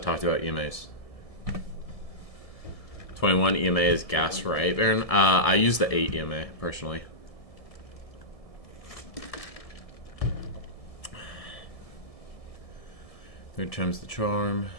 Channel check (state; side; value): late; right; 1.7 ms